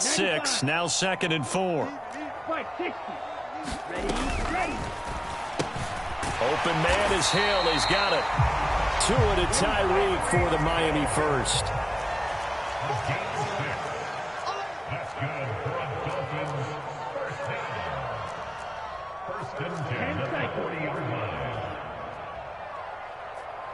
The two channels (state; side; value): identical; both; correlation 1.00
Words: 6. Now 2nd and 4. Open man is Hill. He's got it. Tua to Tyreek for the Miami first.